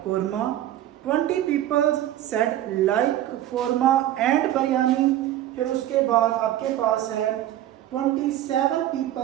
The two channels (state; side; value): quieter; left; 12.8 dB